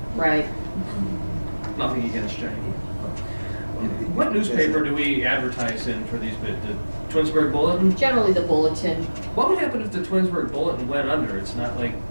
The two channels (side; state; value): both; inverted; correlation -1.00